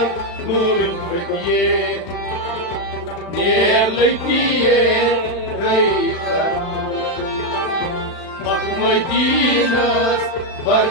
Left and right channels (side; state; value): right; late; 36 ms